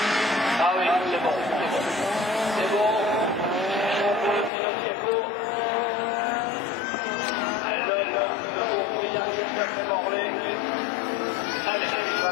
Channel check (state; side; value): drops out; right; at 4.5 s